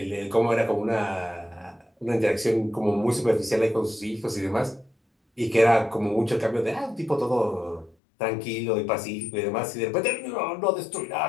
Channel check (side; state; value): right; drops out; at 8.0 s